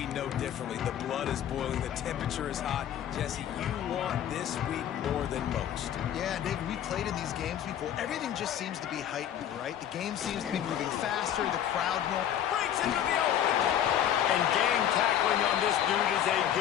know differently. The blood is boiling, the temperature is hot. Jesse, you want this week more than most. Yeah, David, we played in these games before. Everything just seems to be heightened, right? The game seems to be moving faster, the crowd more. Breaks into the open. And gang tackling on this dude is a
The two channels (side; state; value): right; quieter; 10.3 dB